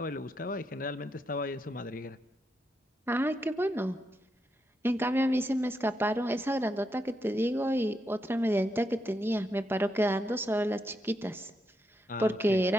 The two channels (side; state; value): both; normal; correlation 0.82